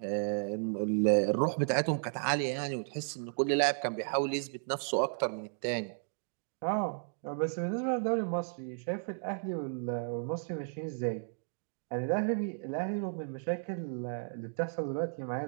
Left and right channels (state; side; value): silent; left; digital silence